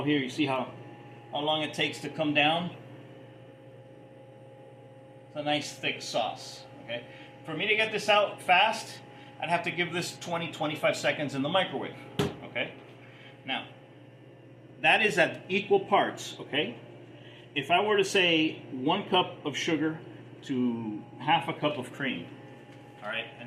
here. You see how long it takes to come down? It's a nice thick sauce. Okay? For me to get this out fast, I'd have to give this 20-25 seconds in the microwave. Okay? Now, that is at equal parts. Okay? If I were to say 1 cup of sugar to half a cup of cream, all right,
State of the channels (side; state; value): both; identical; correlation 1.00